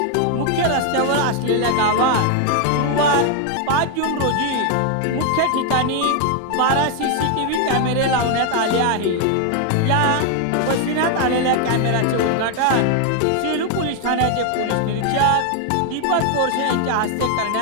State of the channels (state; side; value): different; both; correlation 0.01